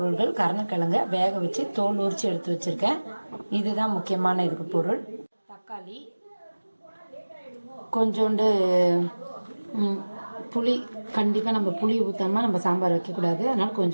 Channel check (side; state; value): both; inverted; correlation -1.00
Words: கருணக்கிழங்கை வேக வச்சு தோல் உரித்து எடுத்து வச்சுருக்கேன். இதுதான் முக்கியமான இதுக்கு பொருள். தக்காளி, கொஞ்சோண்டு புளி. கண்டிப்பாக நம்ம புளி ஊற்றாமல் நம்ம சாம்பார் வைக்கக்கூடாது, அதனால்